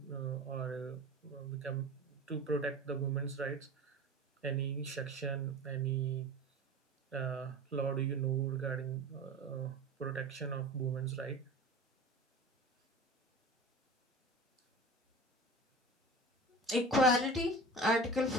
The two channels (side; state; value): both; normal; correlation 0.35